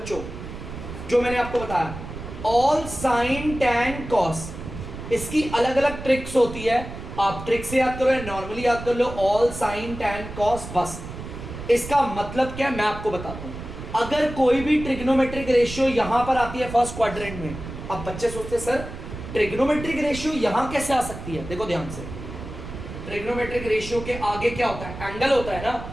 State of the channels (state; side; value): noise; right; rumble, 10 dB below the sound